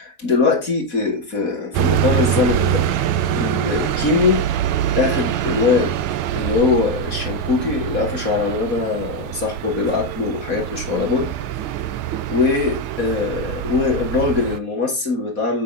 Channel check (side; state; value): right; late; 4.1 ms